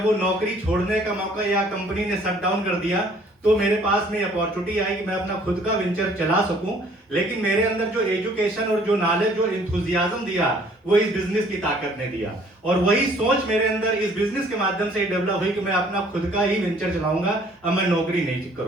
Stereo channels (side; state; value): both; normal; correlation 0.58